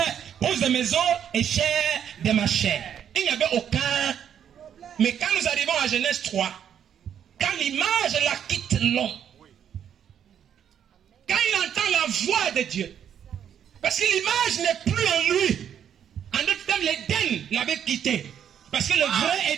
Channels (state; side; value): quieter; left; 9.0 dB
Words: os de mes os et chair de ma chair. Il n'y avait aucun. Mais quand nous arrivons à Genèse 3, quand l'image la quitte l'homme, quand il entend la voix de Dieu, parce que l'image n'est plus en lui. En d'autres termes, l'Éden l'avait quitté. Parce que le vrai